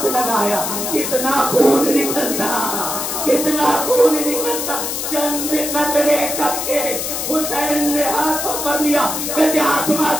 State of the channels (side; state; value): left; noise; hiss, 3 dB below the sound